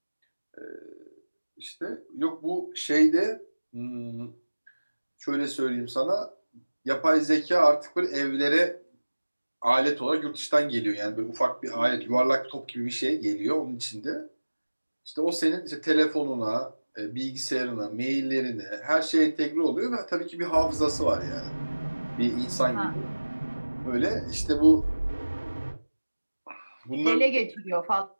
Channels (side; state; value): both; inverted; correlation -1.00